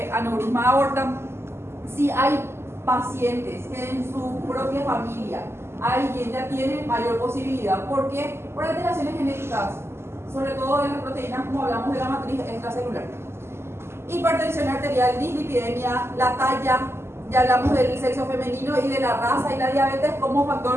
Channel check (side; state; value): left; late; 0.12 ms